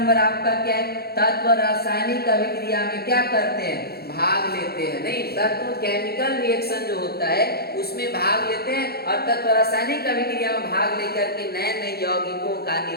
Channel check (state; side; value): late; right; 0.46 ms